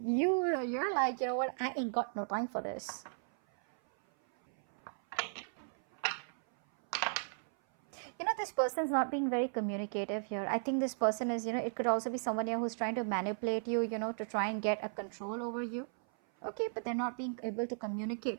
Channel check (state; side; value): silent; left; 54 dB below the other